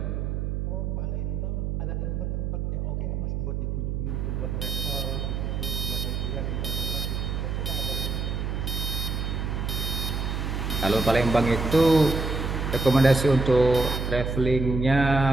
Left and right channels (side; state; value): right; noise; hum, 2 dB below the sound